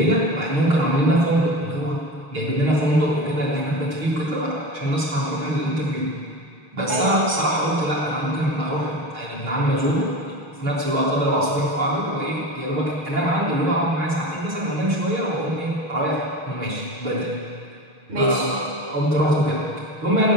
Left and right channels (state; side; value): late; left; 6.5 ms